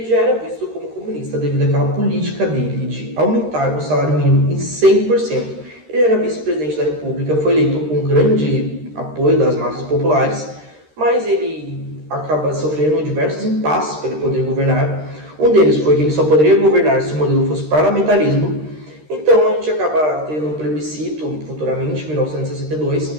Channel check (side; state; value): left; late; 13 ms